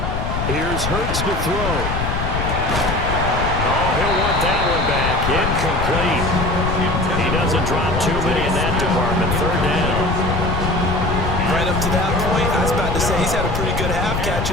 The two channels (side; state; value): left; noise; rumble, 2 dB below the sound